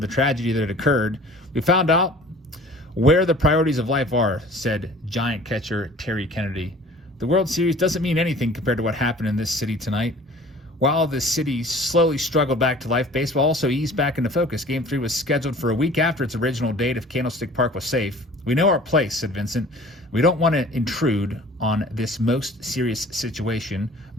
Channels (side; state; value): both; normal; correlation 0.47